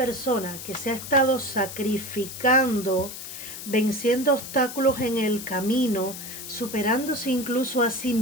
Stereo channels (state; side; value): noise; left; hiss, 10 dB below the sound